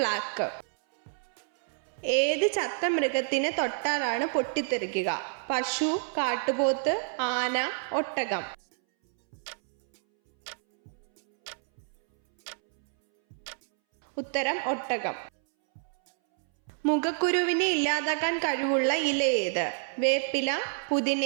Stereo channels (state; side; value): silent; left; 59 dB below the other